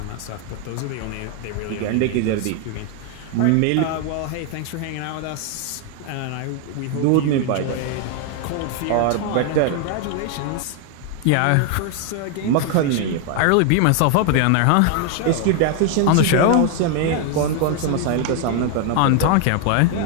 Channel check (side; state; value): both; different; correlation 0.00